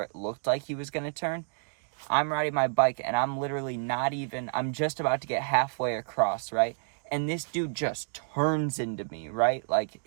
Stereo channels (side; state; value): left; silent; digital silence